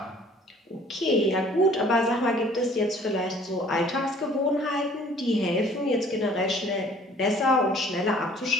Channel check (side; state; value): both; normal; correlation 0.54